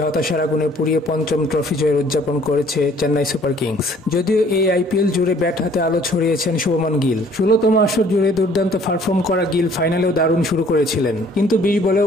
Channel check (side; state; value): both; normal; correlation 0.57